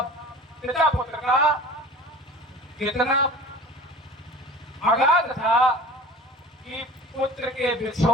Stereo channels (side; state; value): both; normal; correlation 0.41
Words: पिता पुत्र का कितना अगाध था कि पुत्र के